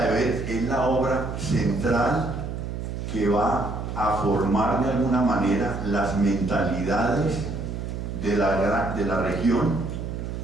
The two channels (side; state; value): right; noise; hum, 5 dB below the sound